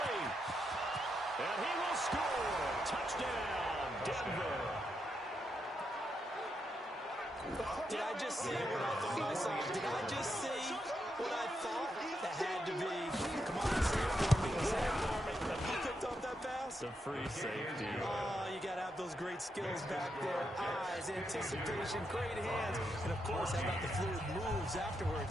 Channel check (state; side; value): normal; both; correlation 0.82